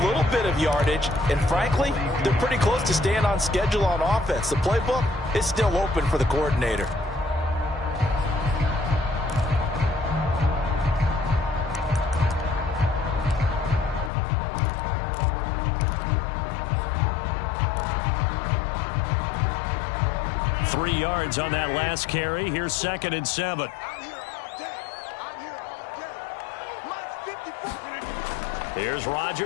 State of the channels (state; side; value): drops out; right; at 14.1 s